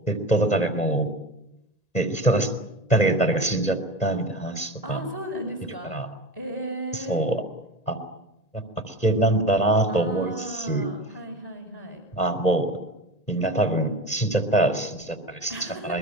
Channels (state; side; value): late; right; 1.9 ms